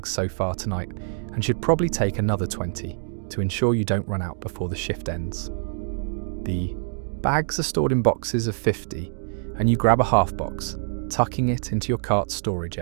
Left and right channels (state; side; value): silent; left; digital silence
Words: so far tonight and should probably take another 20 to ensure you don't run out before the shift ends. The bags are stored in boxes of 50, and you grab a half box, tucking it into your cart's storage